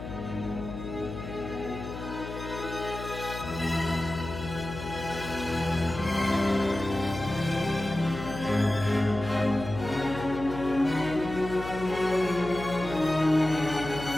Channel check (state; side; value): noise; left; hum, 9 dB below the sound